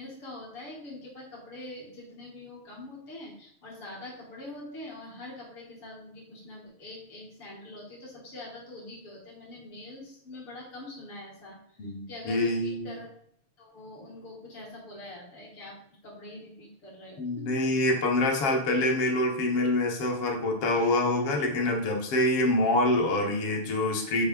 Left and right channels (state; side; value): late; right; 7.3 ms